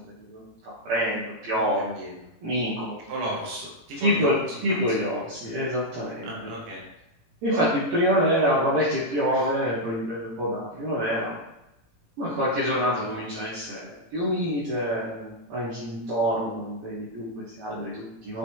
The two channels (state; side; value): late; left; 18 ms